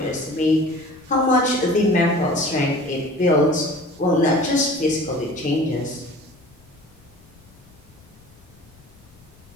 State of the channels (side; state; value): left; noise; rumble, 27 dB below the sound